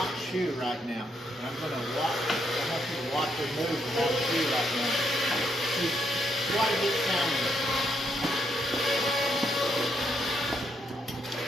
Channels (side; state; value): both; normal; correlation 0.77